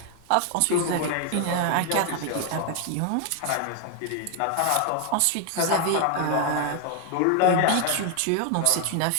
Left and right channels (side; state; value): both; different; correlation 0.00